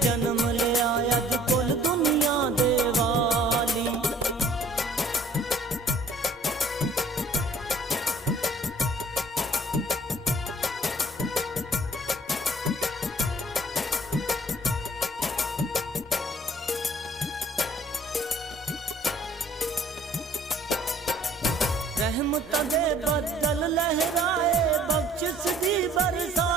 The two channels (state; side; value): normal; both; correlation 0.56